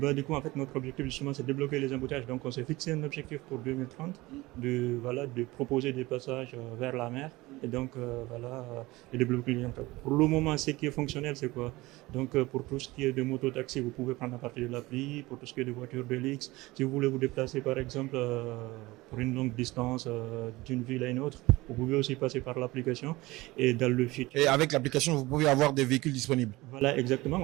du coup, en fait, notre objectif, justement, c'est de débloquer les embouteillages. Donc, on s'est fixé un objectif pour 2030 de proposer des passages vers la mer. Et donc, de développer les embouteillages. Pour le moment, ce qui est fonctionnel, c'est quoi? Donc, pour tout ce qui est de moto-taxi, vous pouvez prendre à partir de l'appli. Pour tout ce qui est de voitures de luxe, si vous voulez vous déplacer, par exemple, pour une longue distance d'une ville à une autre, vous pouvez aussi passer par l'application. Et dans le futur. Et avec l'application, vous pouvez avoir des véhicules disponibles. Voilà, exactement.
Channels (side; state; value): left; quieter; 20.4 dB